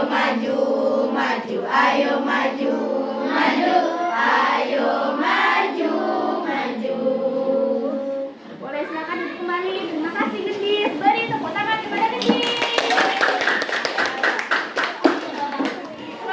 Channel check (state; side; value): identical; both; correlation 1.00